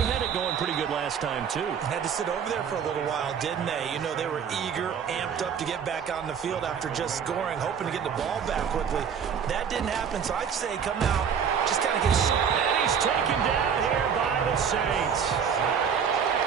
it going pretty good last time too. Had to sit over there for a little while, didn't they? You know, they were eager, amped up to get back on the field after just scoring, hoping to get the ball back quickly. That didn't happen, so I'd say come out, just kind of get... And he's taken down here by the Saints.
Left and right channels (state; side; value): quieter; left; 7.3 dB